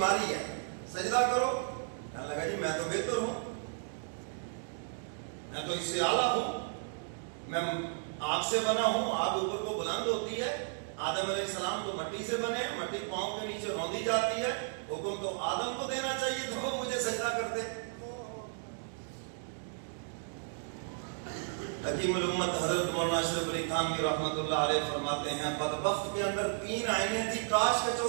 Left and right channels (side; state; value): left; silent; digital silence